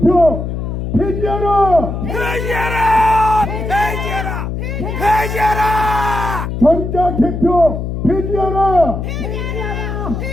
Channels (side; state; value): left; noise; hum, 4 dB below the sound